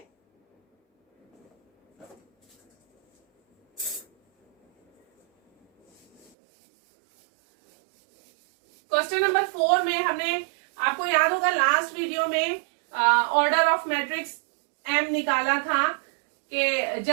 क्वेश्चन नंबर 4 में हमने, आपको याद होगा लास्ट वीडियो में ऑर्डर ऑफ मैट्रिक्स एम निकाला था कि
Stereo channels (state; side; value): drops out; left; at 6.3 s